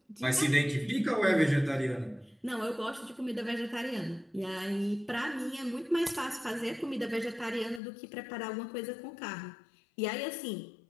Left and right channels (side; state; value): right; drops out; at 7.8 s